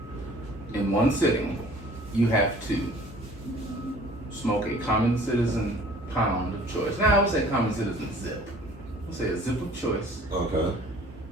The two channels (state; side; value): normal; both; correlation 0.51